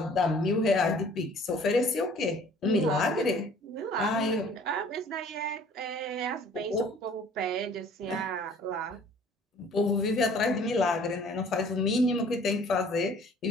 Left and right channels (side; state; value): both; normal; correlation 0.53